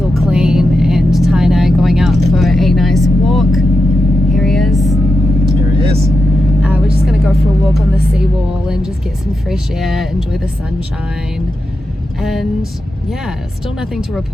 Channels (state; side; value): normal; both; correlation 0.88